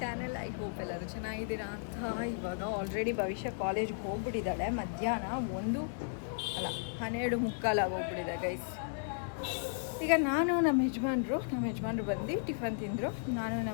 channel. I hope ಎಲ್ಲರೂ ಚೆನ್ನಾಗಿದ್ದೀರಾ ಅಂತ. ಇವಾಗ ಆಲ್ರೆಡಿ ಭವಿಷ್ಯ ಕಾಲೇಜ್ಗೆ ಹೋಗ್ಬಿಟ್ಟಿದ್ದಾಳೆ. ಮಧ್ಯಾಹ್ನ 12:15 ಆಗೋಗ್ಬಿಟ್ಟಿದೆ ಗೈಸ್. ಈಗ ನಾನು ನಮ್ಮ ಯಜಮಾನ್ರು ಬಂದು ಟಿಫನ್ ತಿಂದರು. ನಾನು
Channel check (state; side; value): silent; right; digital silence